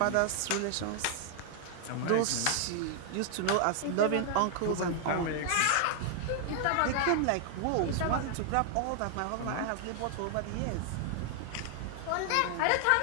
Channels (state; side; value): different; both; correlation 0.00